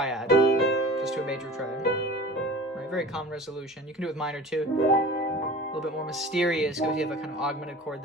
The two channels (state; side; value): normal; both; correlation 0.40